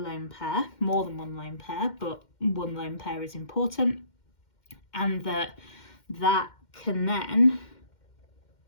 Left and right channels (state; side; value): late; right; 2.1 ms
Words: pair, more than one lone pair, but one lone pair is important, and that can then